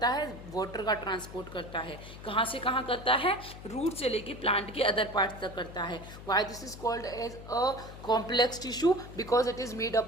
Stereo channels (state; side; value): noise; left; hum, 14 dB below the sound